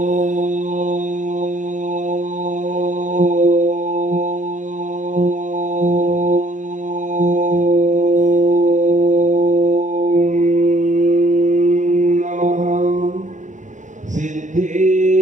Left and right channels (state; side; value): late; left; 0.36 ms